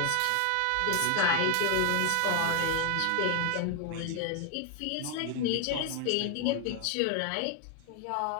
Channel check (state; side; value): different; both; correlation 0.00